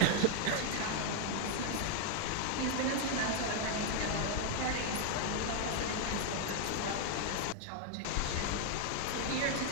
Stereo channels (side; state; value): both; different; correlation 0.00